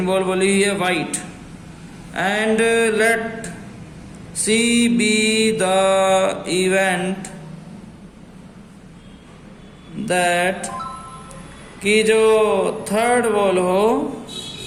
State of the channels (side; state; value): both; identical; correlation 1.00